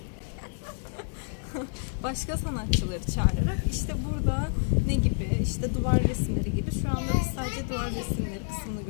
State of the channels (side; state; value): right; silent; digital silence